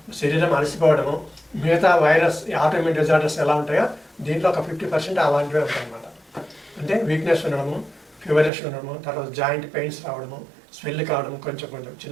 శరీరం అలసిపోవడము, మిగతా వైరస్ ఆటోఇమ్యూన్ డిజార్డర్స్ ఎలా ఉంటాయో దీంట్లో ఒక 50% అలాంటివే ఉంటాయి అన్నమాట. అంటే వీక్నెస్ ఉండడము, ఫీవరిష్ ఉండడము, తర్వాత జాయింట్ పెయిన్స్ రావడము, స్వెల్ కావడం, కొంచెం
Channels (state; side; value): drops out; left; at 8.5 s